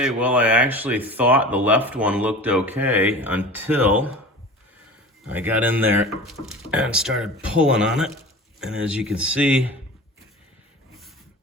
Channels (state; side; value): normal; both; correlation 0.37